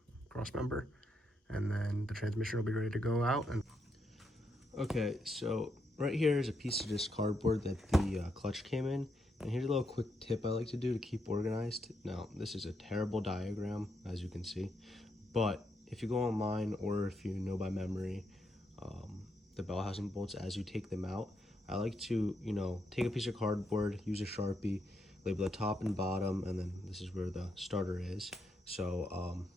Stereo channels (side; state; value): both; normal; correlation 0.80